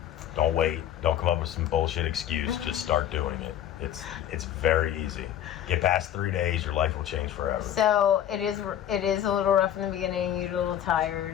Don't wait. Don't come up with some bullshit excuse. Just start doing it. It's very easy. Get past 3 days, your life will change forever. So it is a little rough in the beginning. You're a little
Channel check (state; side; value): quieter; right; 10.8 dB